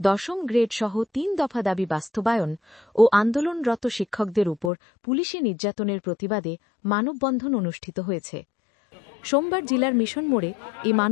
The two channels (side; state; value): right; drops out; at 4.7 s